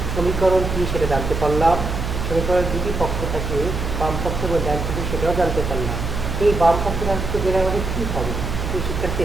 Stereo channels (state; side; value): noise; right; hum, 3 dB below the sound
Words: সমীকরণ কি সেটা জানতে পারলাম। সমীকরণের দুটি পক্ষ থাকে, বাম পক্ষ এবং ডান পক্ষ, সেটাও জানতে পারলাম। এই বাম পক্ষটা জেনে আমাদের কী হবে? এই